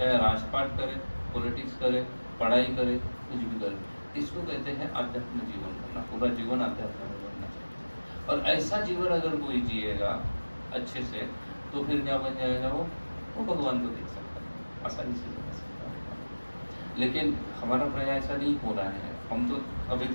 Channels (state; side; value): inverted; both; correlation -1.00